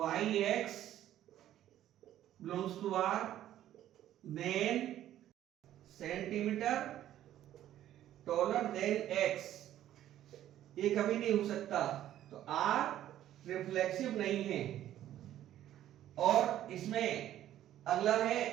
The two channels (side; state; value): left; quieter; 12.3 dB